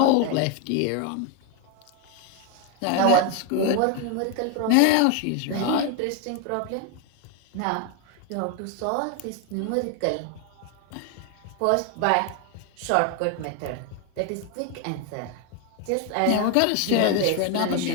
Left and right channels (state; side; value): different; both; correlation 0.01